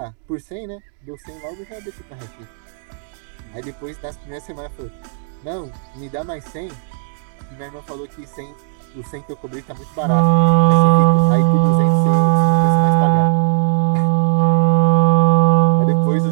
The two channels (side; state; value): left; silent; digital silence